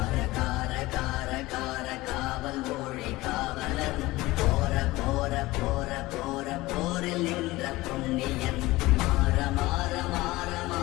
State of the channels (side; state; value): right; quieter; 19.4 dB